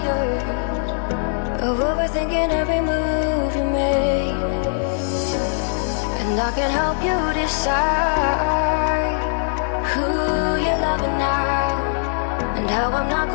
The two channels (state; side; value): silent; right; 65 dB below the other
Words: of overthinking every move you make. And I can help you decide who you're loving now, and how I'm not